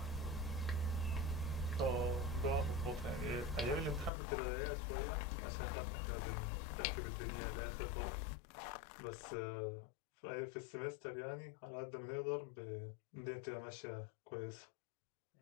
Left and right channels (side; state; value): right; drops out; at 4.1 s